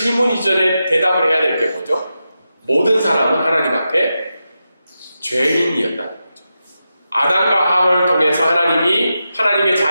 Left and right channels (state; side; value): inverted; both; correlation -0.89